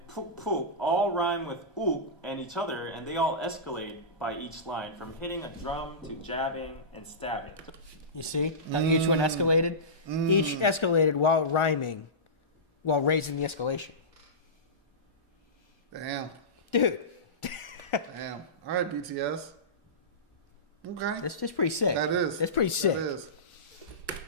푹푹 all rhyme with uk and each other, and they all escalate by each line, from hitting a drum to jabbing and stabbing. You see how each one escalated? Each escalated while rhyming, while raising the escalation. Damn. Dude. Damn. All right, BTS. Okay. That's pretty sick. That is. That's pretty sick. That is.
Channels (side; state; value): both; normal; correlation -0.20